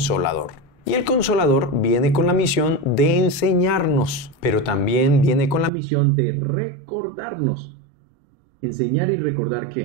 Y el Consolador viene con la misión de enseñarnos, pero también viene con la misión de recordarnos. ¿Enseñar y recordar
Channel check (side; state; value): left; drops out; at 5.7 s